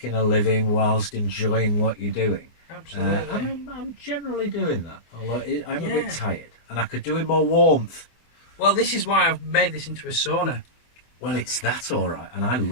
a living whilst enjoying what you're doing. Absolutely. And I'm generally doing that. Although I'm a bit tired, and I could do with more warmth. Well, this is why I've made this into a sauna. Well, it's that all right, and I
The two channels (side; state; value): right; late; 24 ms